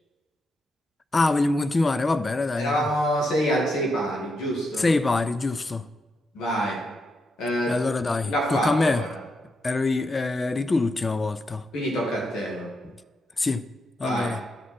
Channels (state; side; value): normal; both; correlation 0.83